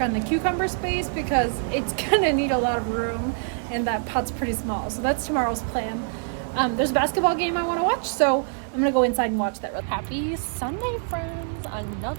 on the cucumber space because it's gonna need a lot of room and that pot's pretty small. So that's tomorrow's plan. There's a basketball game I want to watch, so I'm gonna go inside and watch that. Happy Sunday, friends.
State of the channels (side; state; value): left; silent; 62 dB below the other